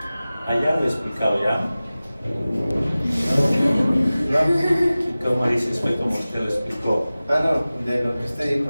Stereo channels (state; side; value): inverted; both; correlation -0.97